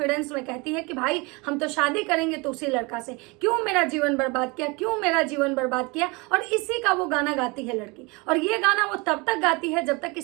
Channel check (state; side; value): quieter; left; 27.3 dB